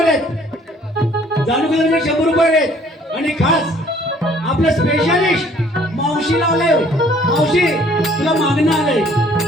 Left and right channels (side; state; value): both; normal; correlation 0.58